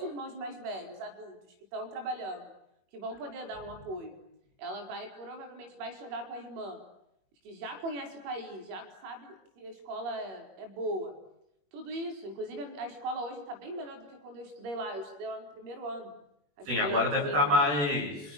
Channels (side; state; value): left; late; 21 ms